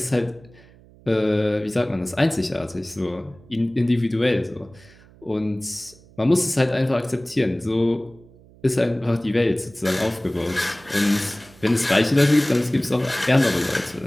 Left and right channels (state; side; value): noise; right; hum, 25 dB below the sound